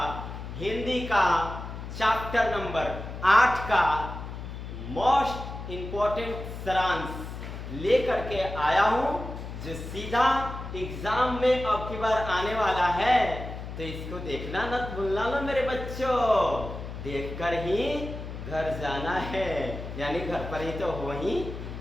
हिंदी का चैप्टर नंबर 8 का मोस्ट इम्पोर्टेंट सारांश लेकर के आया हूं, जो सीधा एग्जाम में अब की बार आने वाला है। तो इसको देखना न भूलना लो मेरे बच्चों, देखकर ही घर जाना है, यानी घर पर ही तो हो ही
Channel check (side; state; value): left; noise; hum, 9 dB below the sound